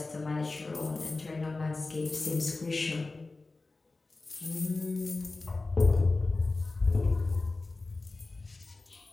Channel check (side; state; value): right; quieter; 3.4 dB